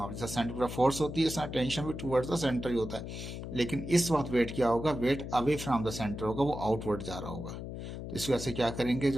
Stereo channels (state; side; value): noise; left; hum, 8 dB below the sound